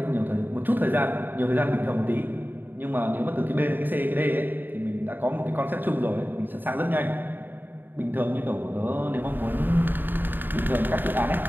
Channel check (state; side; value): late; left; 0.092 ms